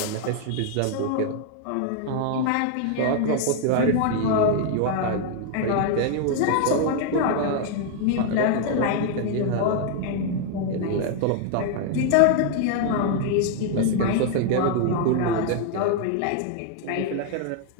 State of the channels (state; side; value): different; both; correlation 0.00